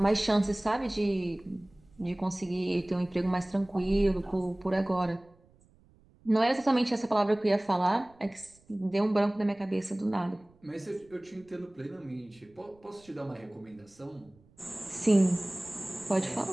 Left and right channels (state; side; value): noise; right; rumble, 30 dB below the sound